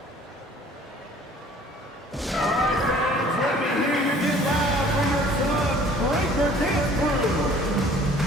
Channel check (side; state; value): both; normal; correlation 0.53